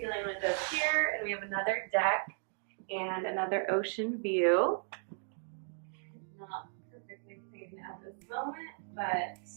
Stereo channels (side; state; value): left; silent; digital silence